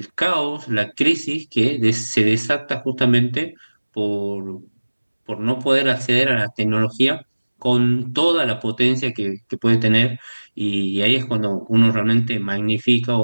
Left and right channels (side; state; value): both; inverted; correlation -1.00